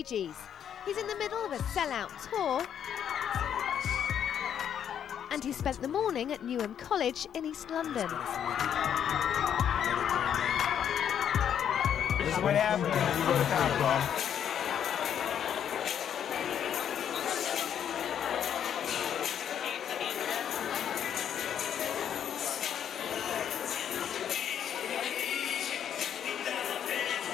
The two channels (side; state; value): right; quieter; 9.0 dB